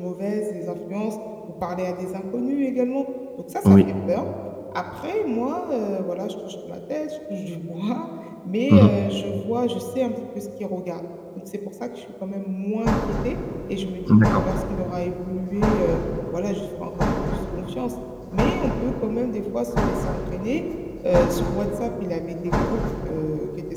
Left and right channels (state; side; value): identical; both; correlation 1.00